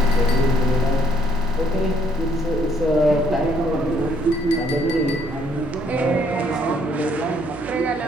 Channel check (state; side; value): normal; both; correlation 0.68